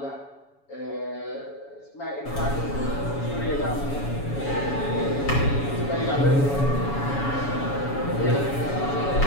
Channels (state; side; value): late; right; 7.1 ms